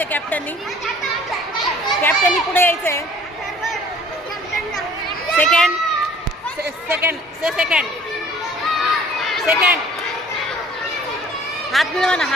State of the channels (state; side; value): normal; both; correlation 0.52